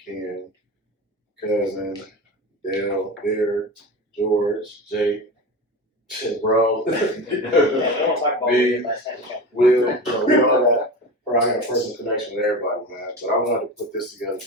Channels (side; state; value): both; normal; correlation 0.27